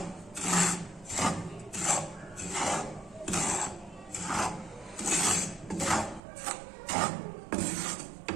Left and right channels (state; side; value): drops out; left; at 6.2 s